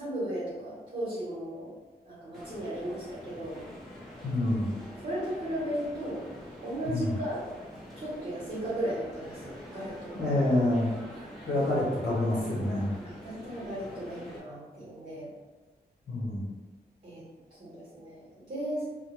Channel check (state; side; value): normal; both; correlation 0.73